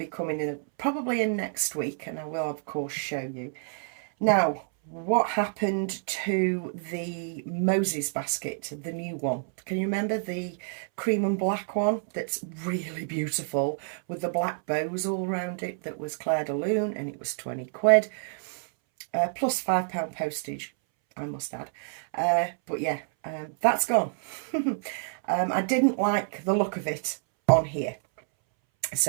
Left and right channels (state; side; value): silent; left; 59 dB below the other